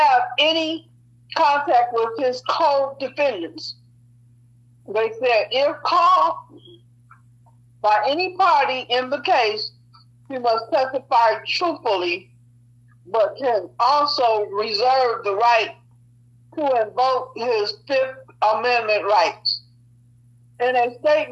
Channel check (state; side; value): identical; both; correlation 1.00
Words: any contact with his co-defendants. They said if called by any party in the case, he must testify truthfully, but can also reserve the right to invoke his Fifth Amendment rights. In a